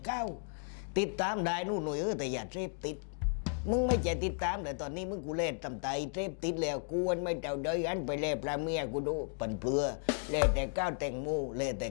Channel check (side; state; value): right; silent; 55 dB below the other